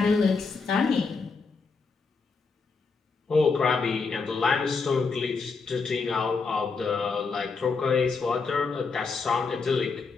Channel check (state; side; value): quieter; right; 4.6 dB